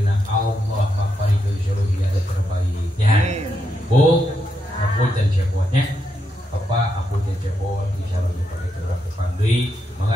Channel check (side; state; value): both; normal; correlation 0.82